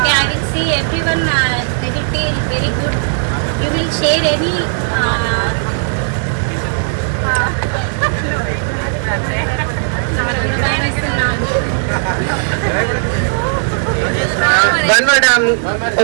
I will see everyone, they will feel very good. You will share any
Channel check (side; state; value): left; silent; digital silence